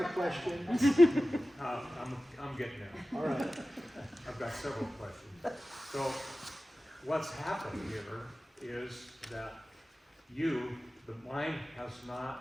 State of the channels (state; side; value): normal; both; correlation 0.95